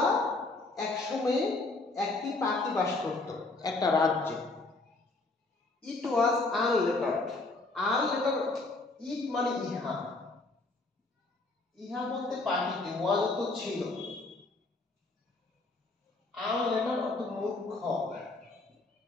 এক সময়ে একটি পাখি বাস করত একটা রাজ্যে। ইট ওয়াজ আনলেটার্ড। আনলেটার্ড, ইট মানে ইহা, ইহা বলতে পাখিটি, ওয়াজ তো ছিল। আনলেটার্ড অর্থ মূর্খ।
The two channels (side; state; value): right; quieter; 3.2 dB